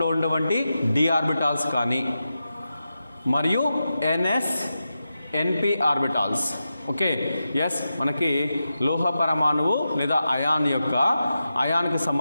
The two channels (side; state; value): both; inverted; correlation -0.90